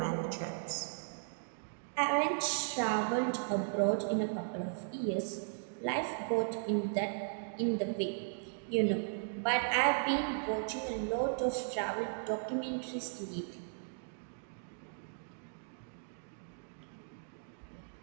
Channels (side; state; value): left; silent; digital silence